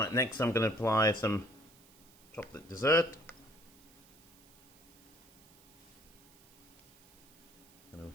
next I'm going to apply some chocolate dessert. Going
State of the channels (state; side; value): noise; right; hiss, 26 dB below the sound